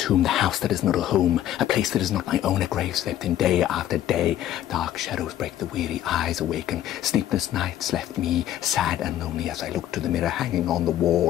the house that is not a home, a place that is not my own, a grave slept in day after day. Dark shadows break the weary eyes awaken. Sleepless nights left me sad and lonely as I looked to the mirror hanging on the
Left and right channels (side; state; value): right; quieter; 12.1 dB